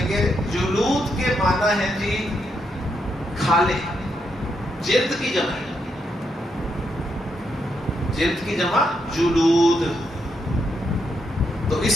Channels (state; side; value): normal; both; correlation 0.80